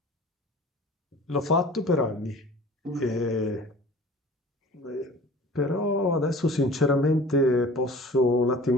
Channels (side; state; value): both; normal; correlation 0.44